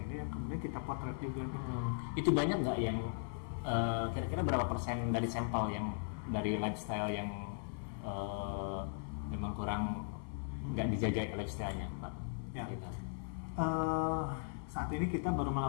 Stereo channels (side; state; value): right; silent; 52 dB below the other